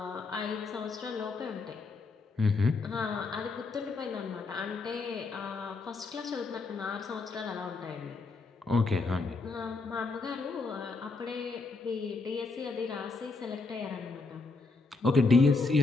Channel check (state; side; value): quieter; right; 3.9 dB